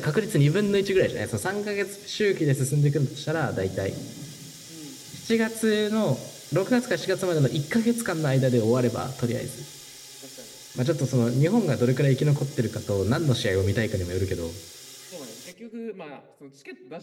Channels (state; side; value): identical; both; correlation 1.00